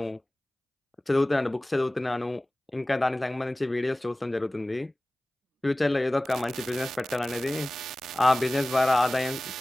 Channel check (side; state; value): both; normal; correlation 0.98